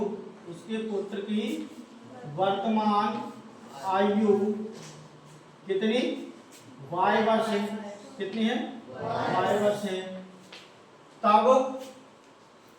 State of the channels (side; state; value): both; identical; correlation 1.00